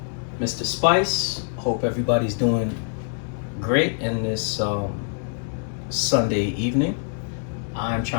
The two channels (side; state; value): right; silent; digital silence